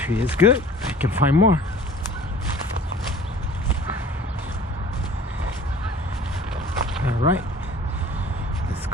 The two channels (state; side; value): normal; both; correlation 0.47